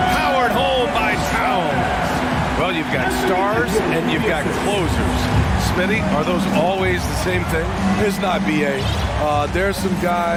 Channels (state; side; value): identical; both; correlation 1.00